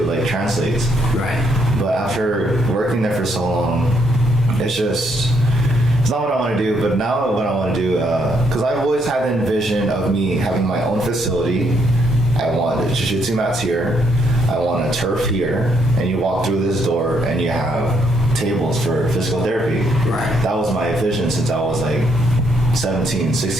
like translates. Right. But after working there for so long, it's not what I want to do. But now what I want to do, because I've always had the vision of me having my own facility. I want the jiu-jitsu mats here. I want a turf here, and you walk through this door and you have tables for physical therapy. Right. That was my vision since I was like 16,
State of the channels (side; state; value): both; normal; correlation 0.73